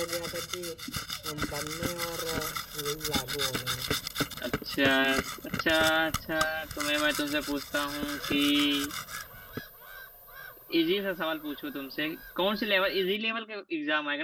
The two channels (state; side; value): identical; both; correlation 1.00